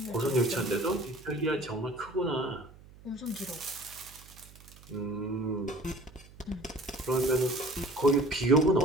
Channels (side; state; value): right; noise; hum, 22 dB below the sound